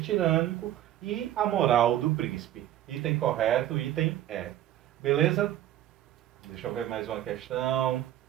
e a moral do príncipe. Item correto, item Beleza? Deixa eu ver mais uma questão.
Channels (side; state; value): left; quieter; 12.6 dB